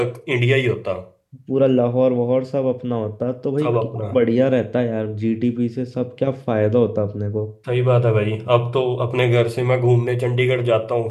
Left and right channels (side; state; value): both; identical; correlation 1.00